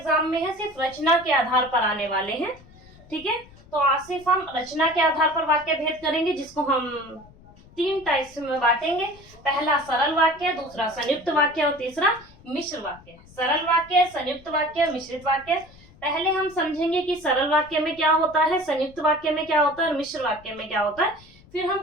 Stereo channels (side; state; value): left; noise; rumble, 24 dB below the sound